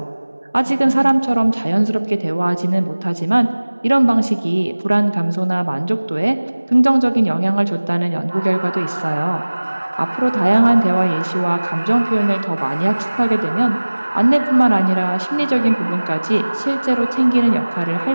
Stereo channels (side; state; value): both; inverted; correlation -1.00